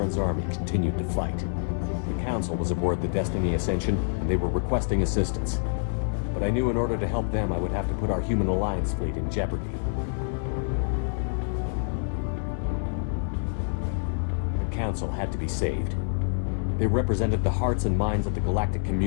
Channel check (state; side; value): silent; right; digital silence